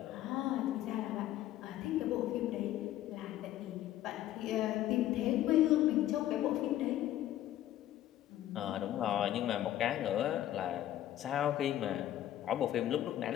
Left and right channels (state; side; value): quieter; right; 13.0 dB